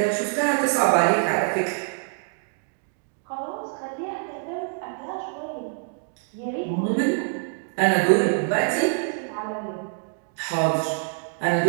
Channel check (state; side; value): silent; left; 62 dB below the other